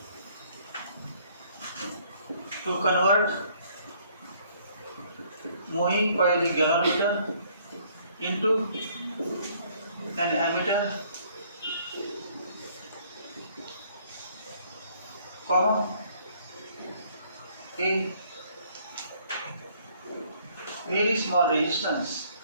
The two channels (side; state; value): both; inverted; correlation -0.62